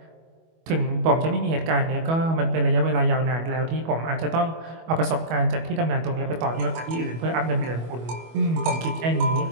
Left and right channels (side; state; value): left; late; 25 ms